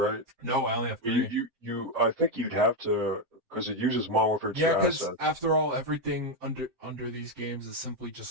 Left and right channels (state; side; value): late; left; 7.7 ms